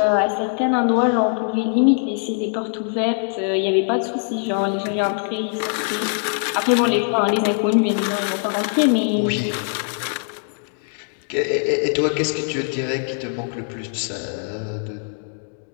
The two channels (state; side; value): silent; right; 60 dB below the other